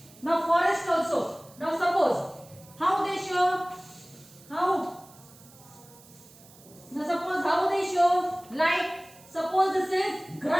Now forest also. Now suppose how they show like suppose this is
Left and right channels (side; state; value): right; noise; hiss, 24 dB below the sound